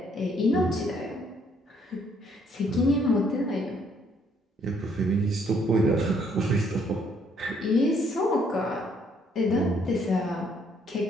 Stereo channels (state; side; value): normal; both; correlation 0.67